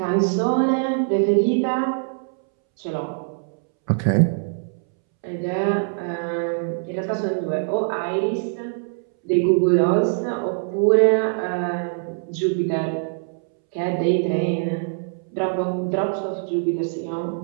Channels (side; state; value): left; silent; 64 dB below the other